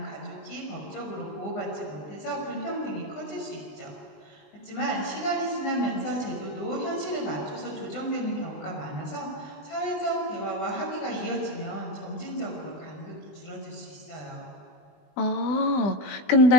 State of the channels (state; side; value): late; right; 20 ms